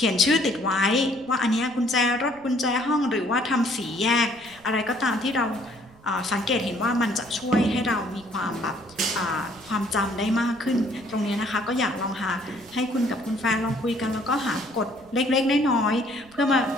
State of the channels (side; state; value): right; noise; rumble, 26 dB below the sound